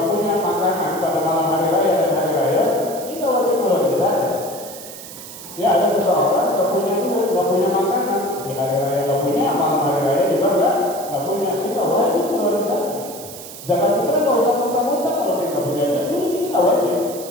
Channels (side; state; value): right; noise; hiss, 14 dB below the sound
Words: punya makanan pada malam hari raya dan hari raya, kita wajib mengeluarkan zakat. Ya ada seseorang nggak punya makanan di hari raya, nggak punya, malam hari raya juga nggak punya, kita wajib mengeluarkan zakat. Zakat kita nggak usah muntah-muntah kalau kita nggak punya zakat, jadi kita wajib.